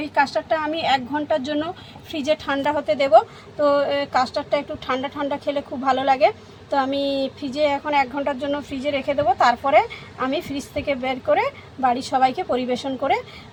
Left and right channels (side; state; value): both; identical; correlation 1.00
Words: এই কাস্টার্ডটা আমি 1 ঘন্টার জন্য ফ্রিজে ঠান্ডা হতে দেব। তো কাস্টার্ডটা একটু ঠান্ডা ঠান্ডা খেলে খুব ভালো লাগে। তো আমি ফ্রিজে এখন 1 ঘন্টার জন্য ফ্রিজে রেখে দেবো, তারপরে আমি ফ্রিজ থেকে বের করে বাড়ির সবাইকে পরিবেশন করে